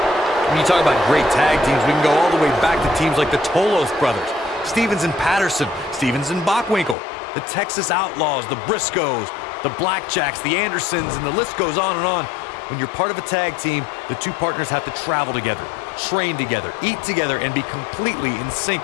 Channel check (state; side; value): drops out; right; at 7.0 s